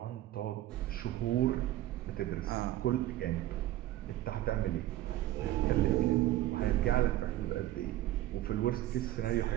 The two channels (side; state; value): left; quieter; 14.7 dB